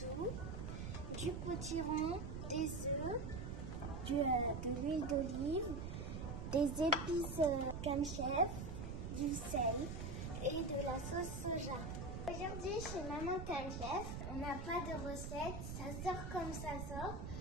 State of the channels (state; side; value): noise; right; rumble, 5 dB below the sound